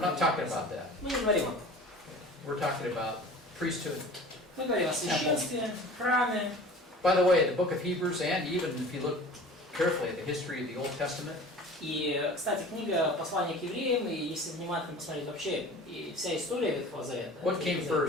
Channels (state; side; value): normal; both; correlation 0.41